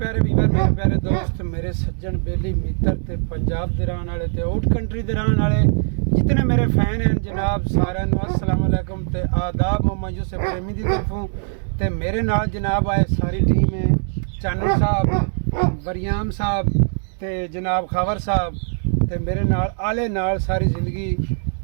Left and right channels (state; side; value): silent; left; digital silence